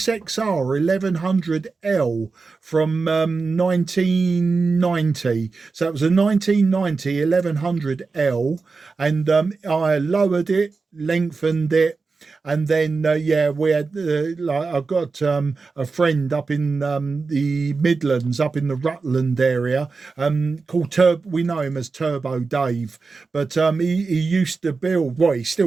1100L from 1990. So it was a 1990 1100L, and I lowered it, lengthened it. And then, yeah, we had, like, I got a friend up in the Midlands, up in the Rutland area, called we know him as Turbo Dave. But he used to build, well, he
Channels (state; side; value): quieter; left; 4.4 dB